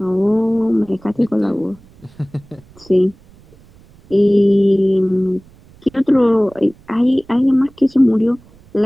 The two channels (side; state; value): right; noise; rumble, 27 dB below the sound